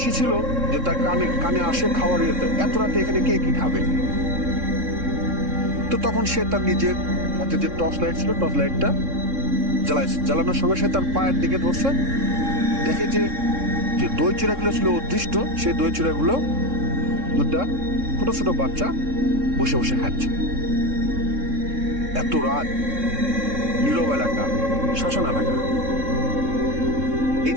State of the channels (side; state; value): left; late; 3.6 ms